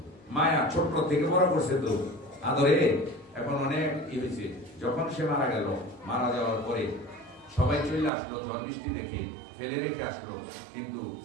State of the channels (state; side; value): drops out; left; at 8.1 s